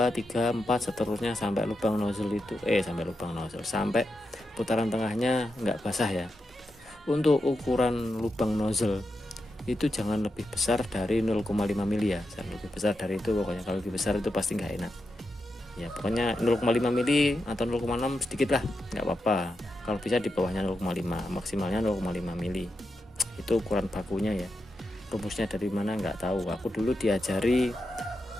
3, 4 seterusnya sampai lubang nozzle itu sampai putaran tengahnya nggak basah ya. Untuk ukuran lubang nozzle itu jangan lebih besar dari 0,5 mili ya, jangan lebih besar dari itu pokoknya. Kalau lebih besar itu pasti nggak enak ya. Pokoknya 0,5 mili atau 0,6 sedikit lah, nggak apa-apa. Kalau bisa di bawahnya 0,5, maksimalnya 0,5 mili. Itu ukuran bakunya ya. Rumusnya dari mana nggak tahu. Aku dulu diajari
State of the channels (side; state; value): both; normal; correlation 0.87